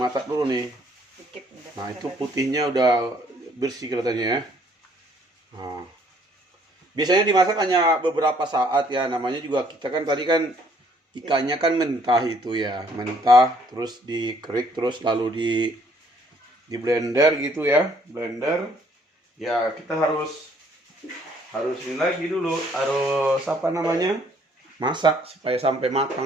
dulu nih. Dikit udah. Nah, itu putihnya udah bersih kelihatannya ya. Nah, biasanya dimasak hanya beberapa saat ya. Namanya juga kita kan tadi kan ikannya kan mentah itu ya. Mentah terus dikerik terus lalu di blender gitu ya. Blender. Ya, kita harus ini lagi dulu. Harus apa namanya? Masak supaya sampai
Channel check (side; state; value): both; normal; correlation 0.63